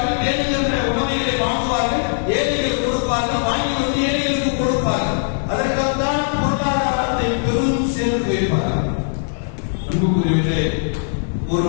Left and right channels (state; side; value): silent; right; digital silence